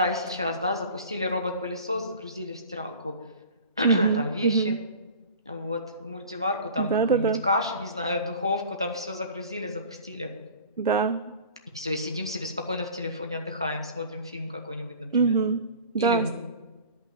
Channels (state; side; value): inverted; both; correlation -0.41